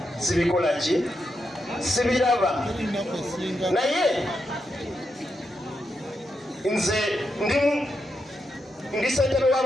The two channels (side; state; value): both; normal; correlation 0.84